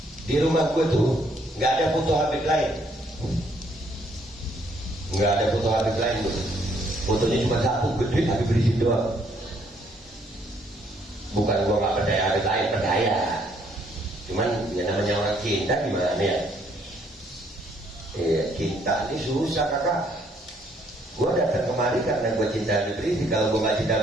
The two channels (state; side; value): normal; both; correlation 0.68